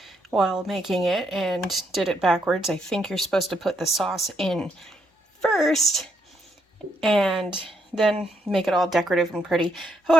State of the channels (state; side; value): normal; both; correlation 0.76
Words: while making it and did it backwards. I think you're supposed to put the sauce in first and then make it all decorative and pretty.